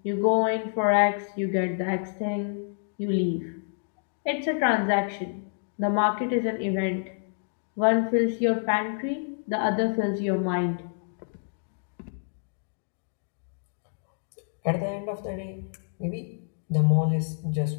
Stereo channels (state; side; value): silent; right; digital silence